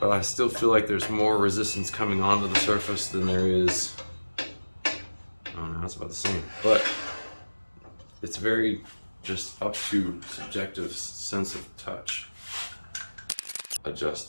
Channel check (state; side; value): inverted; both; correlation -1.00